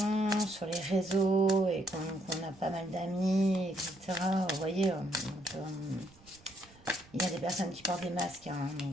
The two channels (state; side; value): noise; right; rumble, 26 dB below the sound